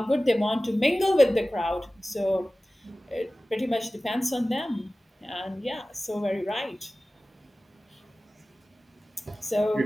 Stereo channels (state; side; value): normal; both; correlation 0.97